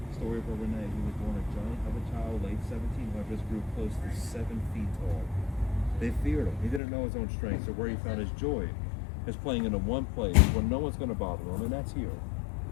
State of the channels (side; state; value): right; drops out; at 6.8 s